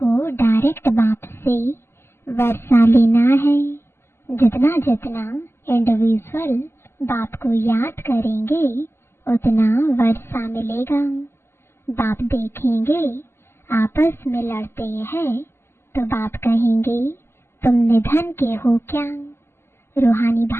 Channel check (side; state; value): right; late; 0.12 ms